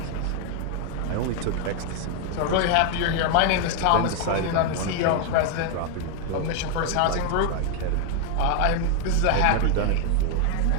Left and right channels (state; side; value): different; both; correlation 0.00